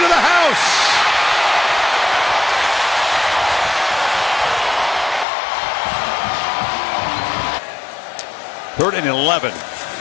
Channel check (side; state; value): right; drops out; at 5.2 s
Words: the house. Third and 11.